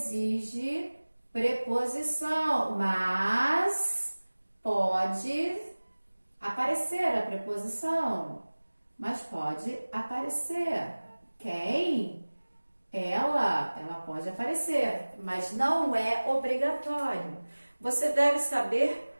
preposição, mas pode aparecer a preposição. Mas pode aparecer. Quem? Ela pode aparecer, mas não é obrigatório. Você deve saber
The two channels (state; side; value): inverted; both; correlation -1.00